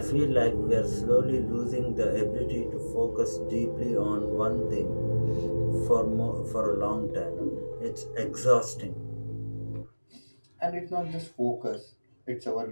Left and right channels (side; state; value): both; inverted; correlation -1.00